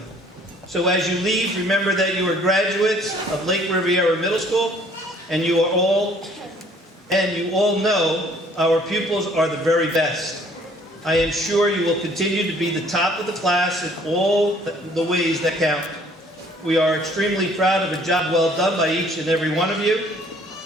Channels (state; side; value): normal; both; correlation 0.58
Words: So as you leave, remember that you are graduates of Lake Riviera Middle School, and you all know our pupils are the very best. I am sure you will continue to be the top of the class in all the ways that count. We are extremely proud of a job well done by each and every one of you.